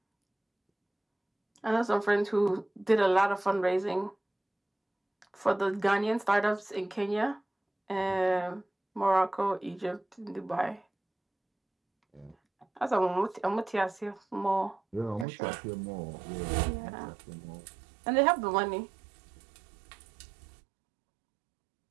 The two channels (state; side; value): drops out; left; at 15.2 s